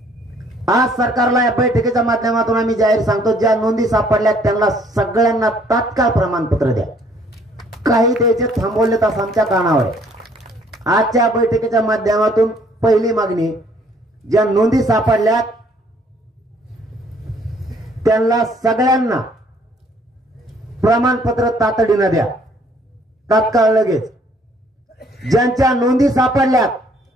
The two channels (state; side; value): normal; both; correlation 0.62